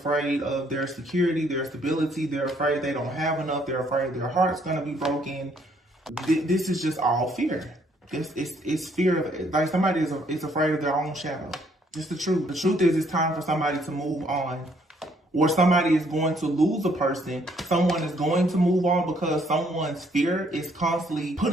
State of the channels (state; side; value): normal; both; correlation 0.67